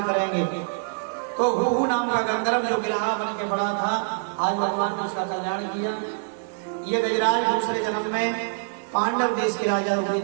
करेंगे। तो हु नाम का गंधर्व जो गिरहा बन के बड़ा था, आज भगवान ने उसका कल्याण किया। ये गजराज दूसरे जन्म में पांडव देश के राजा हुए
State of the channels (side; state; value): left; silent; digital silence